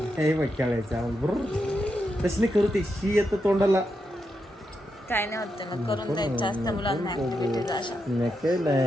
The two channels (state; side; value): normal; both; correlation 0.85